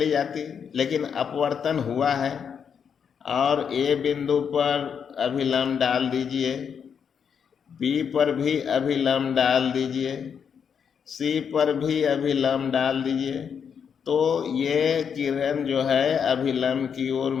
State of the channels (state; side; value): quieter; right; 7.2 dB